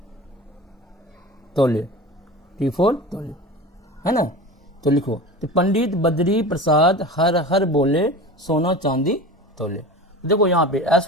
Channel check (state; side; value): normal; both; correlation 0.33